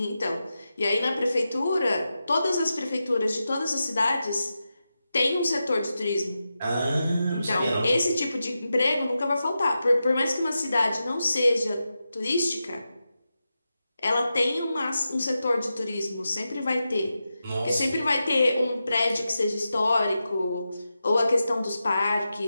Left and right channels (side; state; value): both; inverted; correlation -0.90